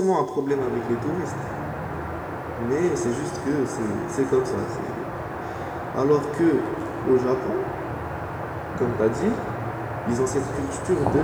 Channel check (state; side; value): identical; both; correlation 1.00